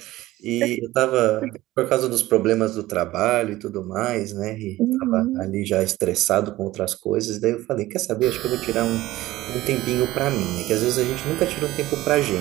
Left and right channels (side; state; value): left; quieter; 16.9 dB